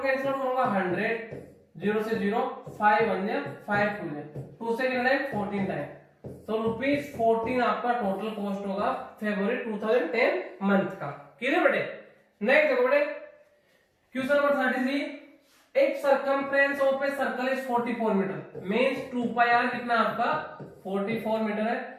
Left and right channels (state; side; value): identical; both; correlation 1.00